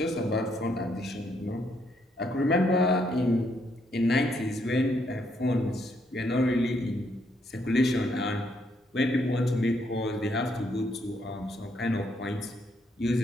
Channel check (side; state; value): both; normal; correlation 0.74